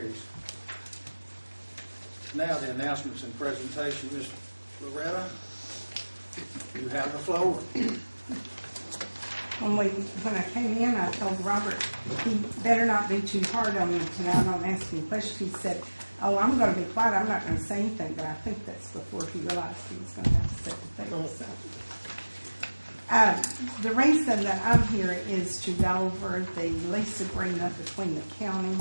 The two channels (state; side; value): inverted; both; correlation -1.00